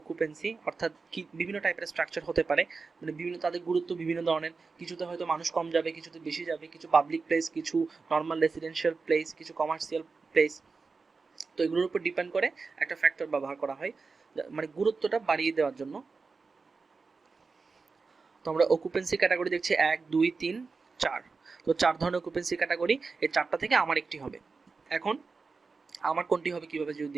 অকুপেন্সি, অর্থাৎ কি বিভিন্ন টাইপের স্ট্রাকচার হতে পারে, মানে বিভিন্ন তাদের গুরুত্ব বিভিন্ন ধরনের, কিছুতে হয়তো মানুষ কম যাবে, কিছুতে বেশি যাবে, কিছু পাবলিক প্লেস, কিছু নর্মাল রেসিডেন্সিয়াল প্লেস, কিছু কমার্শিয়াল প্লেস। তো এগুলোর উপর ডিপেন্ড করে একটা ফ্যাক্টর ব্যবহার করা হয়, মানে গুরুত্বটা বাড়িয়ে দেওয়ার জন্য। তো আমরা অকুপেন্সি ক্যাটাগরি দেখছি 1 2 3 4, তো 4 ধরনের অকুপেন্সি ক্যাটাগরি, এই 4টা থেকে আমার একটি হবে। এখন আমার কোনটি হবে কিভাবে যদি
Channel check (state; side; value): quieter; left; 4.5 dB